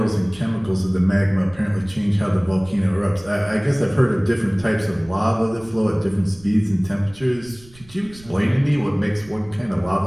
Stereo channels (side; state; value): right; noise; rumble, 23 dB below the sound